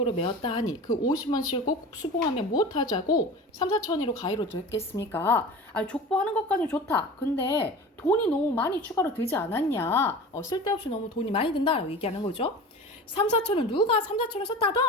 메었다 하니 그 50원씩을 꼭 수봉하면 무엇하자고 3, 4천이로 가위로 됐겠습니까? 아니, 족보하는 것까지는 좋다. 근데 돈이 너무 많이 추가로 들지 않았냐? 쓸데없이 너무 돈이 많이 든다라고 얘기하는 거죠. 3, 4천은 누가 3, 4천을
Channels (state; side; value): normal; both; correlation 0.35